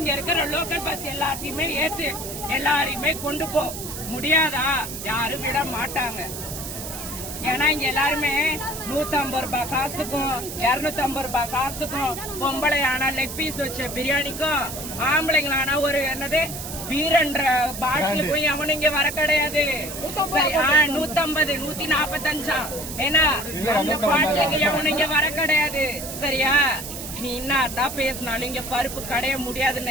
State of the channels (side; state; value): right; noise; hiss, 8 dB below the sound